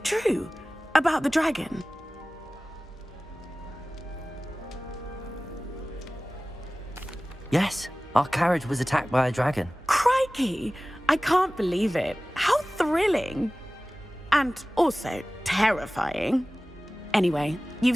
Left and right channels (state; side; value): normal; both; correlation 0.98